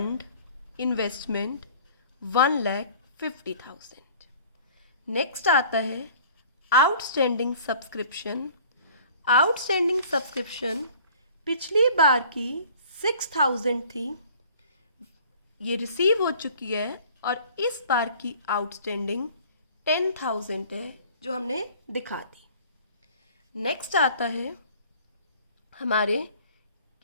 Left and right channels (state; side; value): inverted; both; correlation -0.50